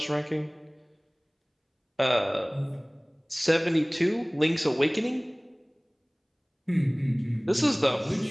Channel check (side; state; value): both; identical; correlation 1.00